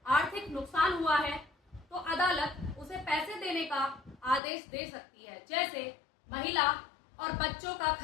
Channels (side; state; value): right; drops out; at 4.4 s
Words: आर्थिक नुकसान हुआ है तो अदालत उसे पैसे देने का आदेश दे सकती है, जैसे महिला और बच्चों का